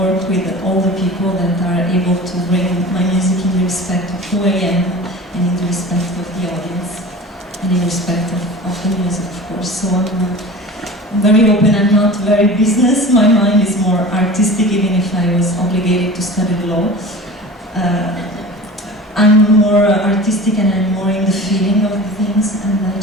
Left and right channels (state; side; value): normal; both; correlation 0.37